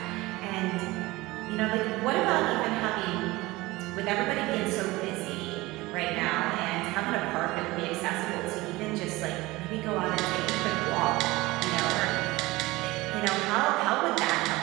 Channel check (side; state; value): left; quieter; 20.4 dB